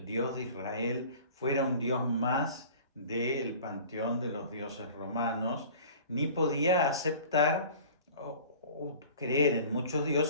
Dios de Israel fuera un Dios más del panteón de los dioses romanos, ni podía aceptar o creer en muchos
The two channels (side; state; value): both; inverted; correlation -0.43